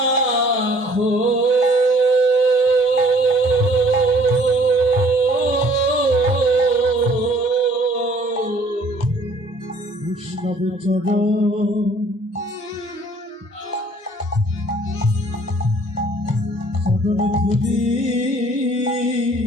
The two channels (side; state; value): both; normal; correlation 0.57